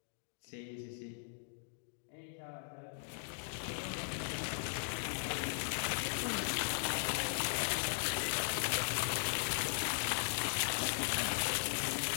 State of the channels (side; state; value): right; silent; digital silence